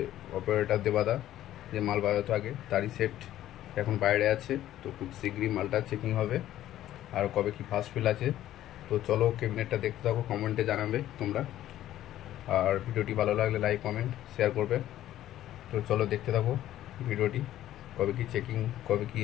অপারেটর দেবাদা যে মাল বাজাতো আগে, তারই সেট এখন বাইরে আছে। তো খুব শীঘ্রই মালটা চেকিং হবে। আর কবে কি ফার্স্ট ফিল আছে। তো চলো ক্যাবিনেটটা দেখতে থাকো, কমেন্টে জানাবে তোমরা। আর ভিডিওটি ভালো লাগলে লাইক কমেন্ট শেয়ার করবে। তো চলো দেখতে থাকো ভিডিওটি, কবে কি চেকিং কবে কি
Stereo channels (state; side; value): quieter; right; 13.1 dB